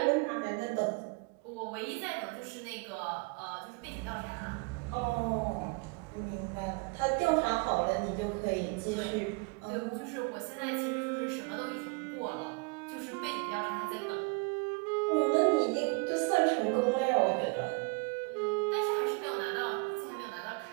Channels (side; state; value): left; quieter; 30.0 dB